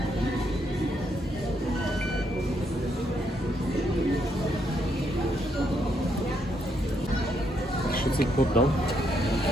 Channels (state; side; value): normal; both; correlation 0.76